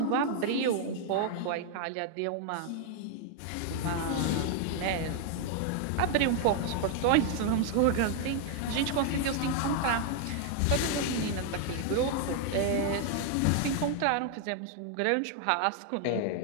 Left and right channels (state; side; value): different; both; correlation 0.00